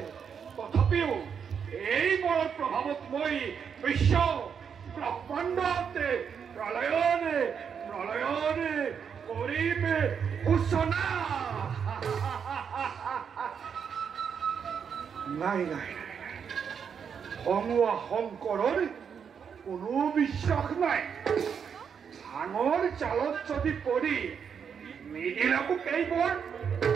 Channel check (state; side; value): quieter; left; 7.0 dB